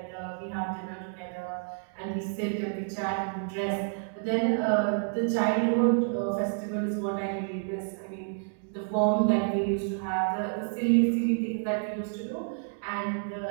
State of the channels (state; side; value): silent; left; 57 dB below the other